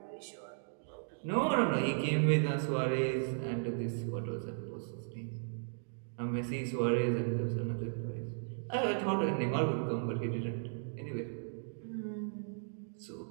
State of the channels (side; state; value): left; silent; digital silence